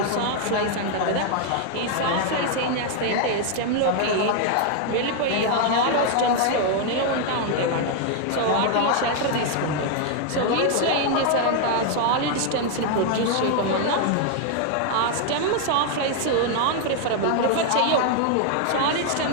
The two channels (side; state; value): both; different; correlation 0.00